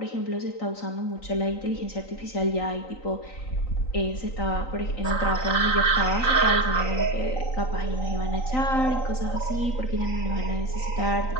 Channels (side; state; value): right; late; 3.9 ms